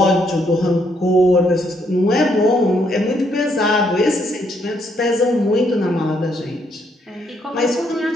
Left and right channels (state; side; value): normal; both; correlation 0.73